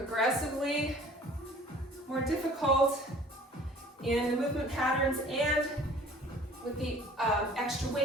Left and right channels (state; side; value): normal; both; correlation 0.50